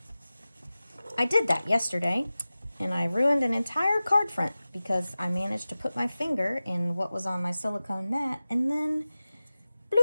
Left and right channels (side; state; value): both; inverted; correlation -0.96